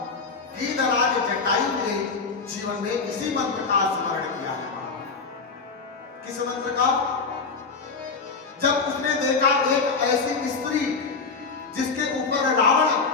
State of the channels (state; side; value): quieter; right; 4.6 dB